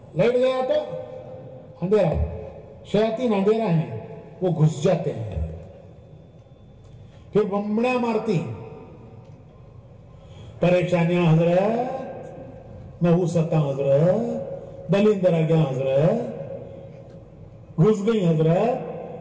लाइट गया तो अंधेरा। शयातीन अंधेरा है, वो घुस जाते हैं, फिर बम्बड़ियां मारती, परेशानियां हजरत, नहुसता हजरत, दलिंदर आ गया हजरत, घुस गई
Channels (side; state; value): both; identical; correlation 1.00